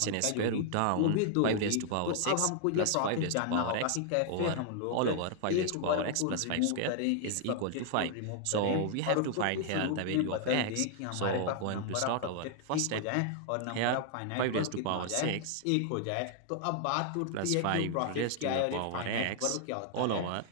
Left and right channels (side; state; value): both; different; correlation 0.00